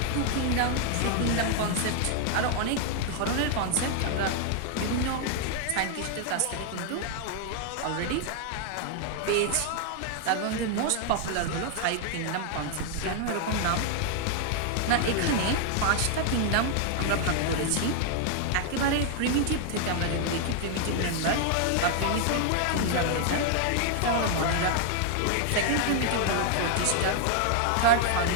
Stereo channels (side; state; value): both; different; correlation 0.00